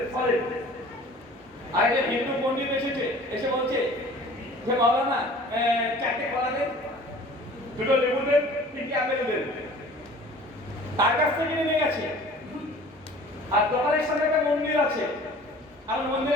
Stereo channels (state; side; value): normal; both; correlation 0.46